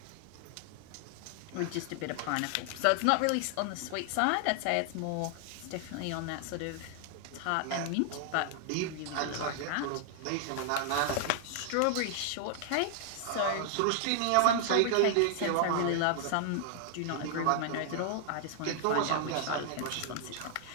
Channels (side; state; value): both; different; correlation 0.00